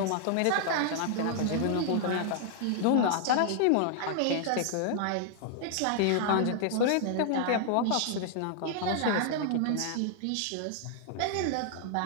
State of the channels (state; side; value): different; both; correlation 0.00